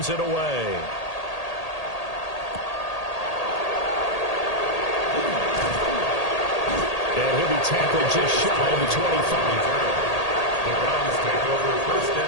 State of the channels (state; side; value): late; right; 1.8 ms